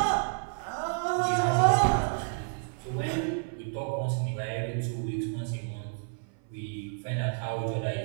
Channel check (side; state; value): left; silent; 58 dB below the other